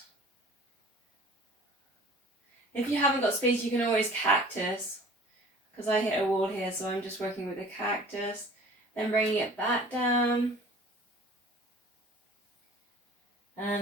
If you haven't got space, you can always cactus, because I hit a wall here, so I'm just working with a cactus. Then bringing it back down.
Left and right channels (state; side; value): normal; both; correlation 0.46